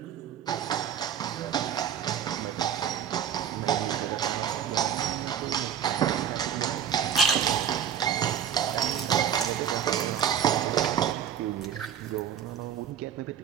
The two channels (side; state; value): left; quieter; 8.9 dB